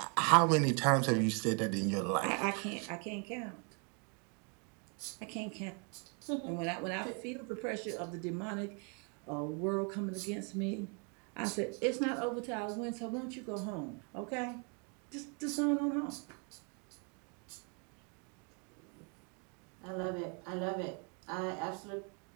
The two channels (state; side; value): quieter; left; 37.1 dB